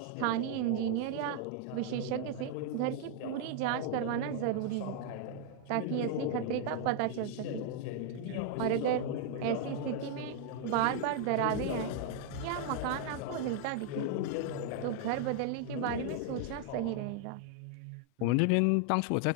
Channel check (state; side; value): different; both; correlation 0.00